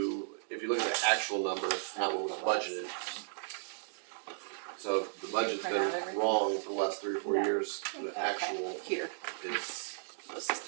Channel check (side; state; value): left; silent; digital silence